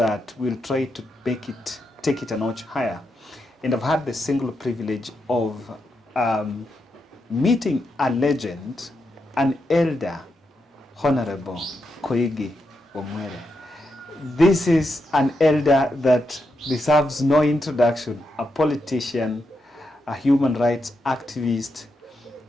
we'll try to take it a notch higher. And I've had the single privilege of meeting a legend, an elder, Honorable Koigi Wamwere. This is an elder that deserves no introduction, a politician, a human rights activist,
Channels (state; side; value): normal; both; correlation 0.84